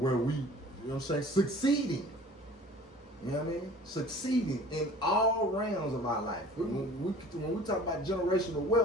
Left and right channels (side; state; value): both; normal; correlation 0.47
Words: we, you know what I'm saying, succeeding. You know what I mean? Succeeding in all realms of our life. When we talk about generational